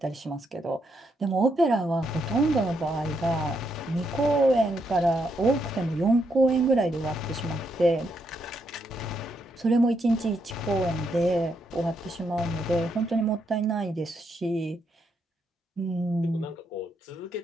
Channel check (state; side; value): normal; both; correlation 0.78